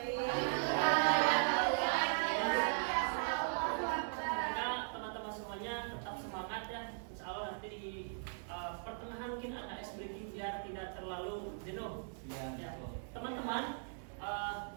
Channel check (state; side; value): silent; left; digital silence